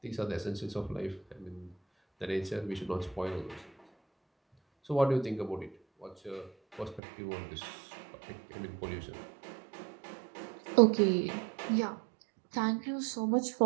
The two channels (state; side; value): drops out; left; at 7.0 s